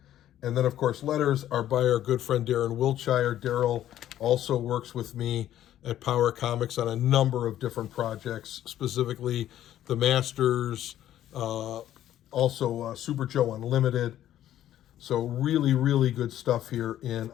And then, of course, letters are by our good friend Darren Wiltshire. Daryl also works with me at Power Comics on a number of different projects, specifically the Masters, also Super Joe Unlimited. So really, really good stuff here in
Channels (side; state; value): right; quieter; 12.2 dB